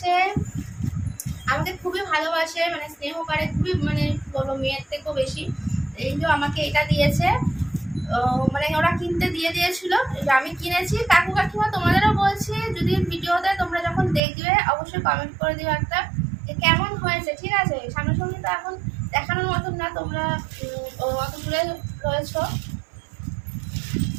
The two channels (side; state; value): left; drops out; at 14.2 s